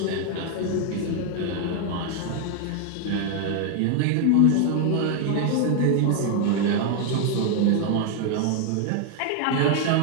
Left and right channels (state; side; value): different; both; correlation 0.00